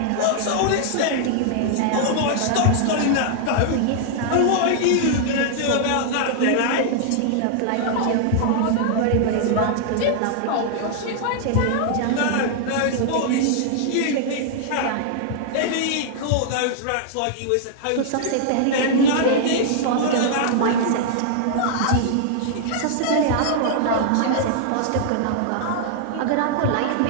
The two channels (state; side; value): different; both; correlation -0.01